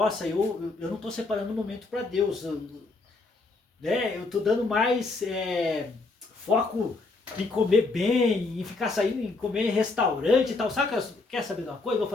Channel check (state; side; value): quieter; right; 3.5 dB